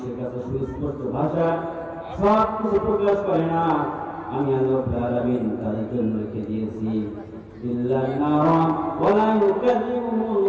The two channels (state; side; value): identical; both; correlation 1.00